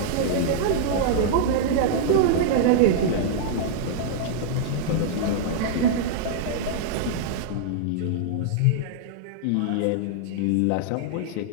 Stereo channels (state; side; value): different; both; correlation -0.01